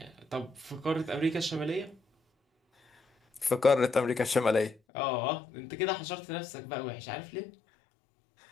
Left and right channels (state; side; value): drops out; right; at 4.8 s